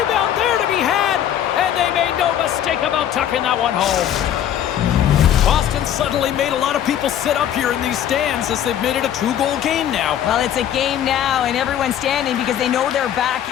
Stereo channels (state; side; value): quieter; right; 10.4 dB